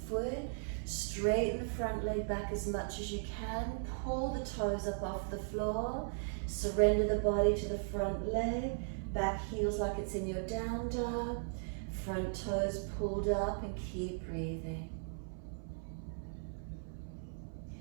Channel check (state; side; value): silent; left; 53 dB below the other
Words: foot. Straighten the front leg back as much as you can. Pull the toes up off the floor. Surrender the body to the front leg. Back heels like it's in your down dog. Front toes pulled up and keep breathing.